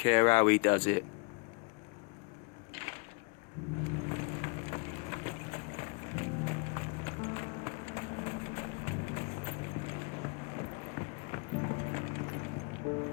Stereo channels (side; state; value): right; quieter; 32.5 dB